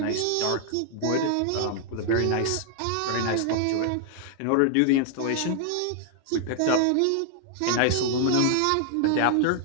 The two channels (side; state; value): both; different; correlation 0.00